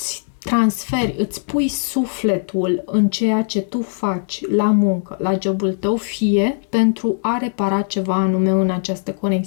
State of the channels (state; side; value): silent; right; digital silence